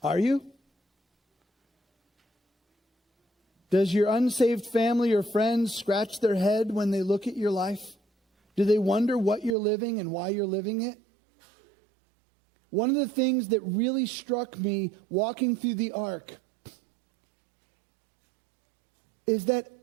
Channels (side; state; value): left; drops out; at 9.6 s